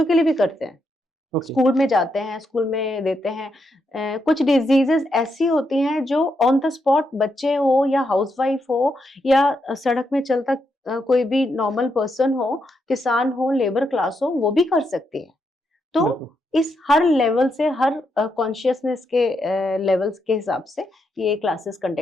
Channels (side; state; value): both; normal; correlation 0.81